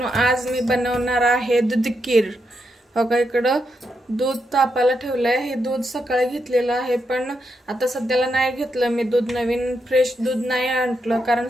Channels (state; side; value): normal; both; correlation 0.82